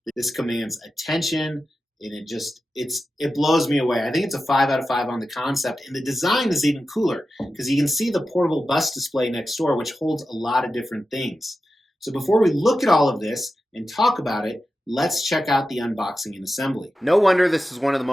This commands attention, and it blows me away. I think it's a 5 out of 5 on the concept, and the design is even cooler because you can see the portable bus display next door, which holds a lot of different things. So before we look at all of this and talk about it, let's check out the unboxing and assembly. No wonder this is one of the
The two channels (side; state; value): both; normal; correlation 0.92